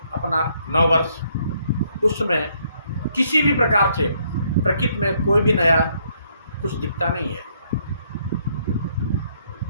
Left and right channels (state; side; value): inverted; both; correlation -0.70